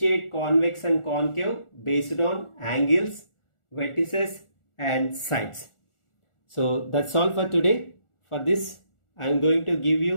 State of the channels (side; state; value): right; late; 1.4 ms